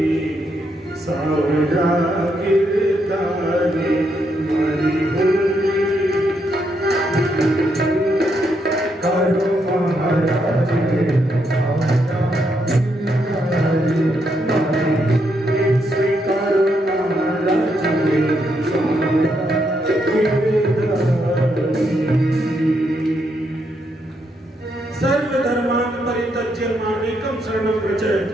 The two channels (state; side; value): normal; both; correlation 0.78